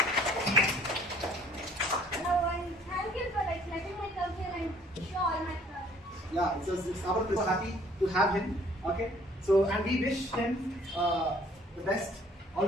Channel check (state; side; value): normal; both; correlation 0.57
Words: Thank you for letting me come here and show all my projects. Yeah, it's our pleasure. So happy to have him. Okay. So and we wish him the best, all